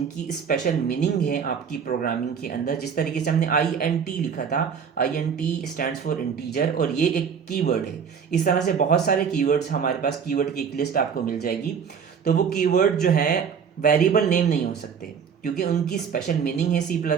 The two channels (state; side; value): quieter; left; 6.9 dB